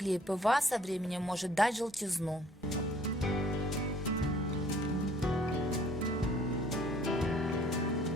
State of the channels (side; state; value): both; normal; correlation 0.57